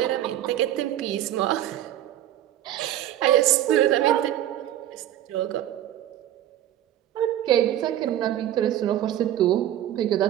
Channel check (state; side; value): quieter; left; 12.3 dB